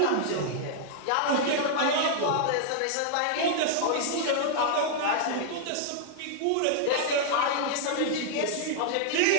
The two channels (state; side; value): different; both; correlation -0.01